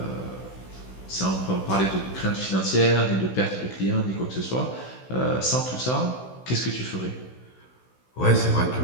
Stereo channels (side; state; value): right; late; 16 ms